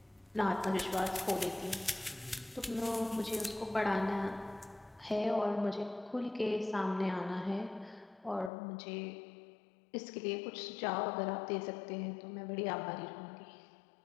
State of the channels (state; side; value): drops out; right; at 8.5 s